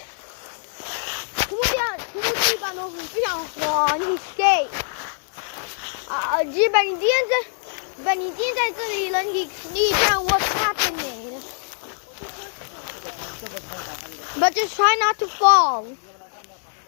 土木地板都很非常滑，你 skate。基本你今天在这里了，你看 what's happening。But just try not to fall.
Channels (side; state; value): right; silent; digital silence